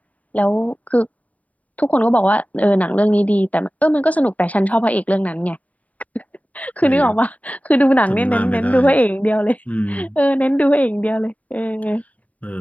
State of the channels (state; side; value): late; right; 0.070 ms